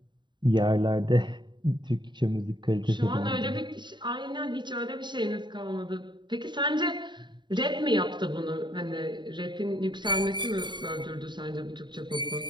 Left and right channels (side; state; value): left; late; 0.22 ms